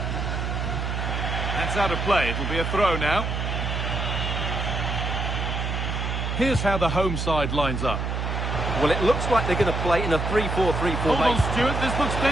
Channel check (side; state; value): right; noise; hum, 2 dB below the sound